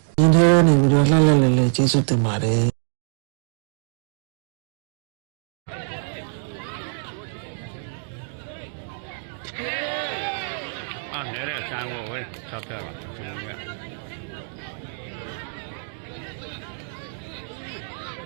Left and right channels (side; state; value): left; silent; digital silence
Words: ဒီထဲနေပြီးတော့လှလှလဲလဲကျေးဇူးတင်ပါတယ်နေတဲ့ဆန်းကိုဝယ်ဆောက်ပြပါကျွန်တော်က